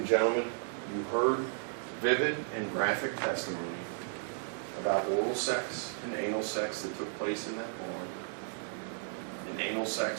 gentlemen, you heard vivid and graphic testimony about oral sex and anal sex that took place in that barn, and anal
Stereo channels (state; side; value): silent; left; 55 dB below the other